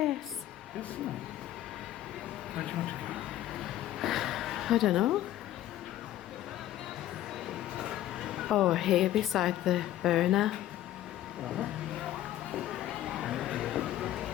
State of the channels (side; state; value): right; quieter; 13.4 dB